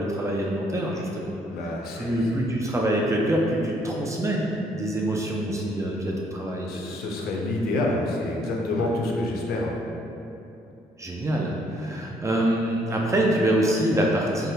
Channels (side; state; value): both; normal; correlation 0.67